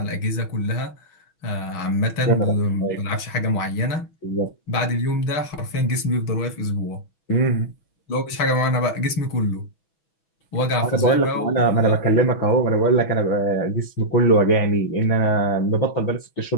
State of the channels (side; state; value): right; late; 6.2 ms